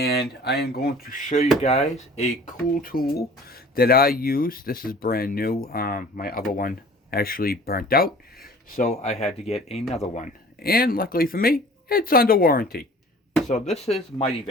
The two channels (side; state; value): both; normal; correlation 0.47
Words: I am going to show you guys a cool tool that I use. This is brand new. My other one actually burnt out, so I had to get another one. And luckily for me, it's under warranty. So this is Mighty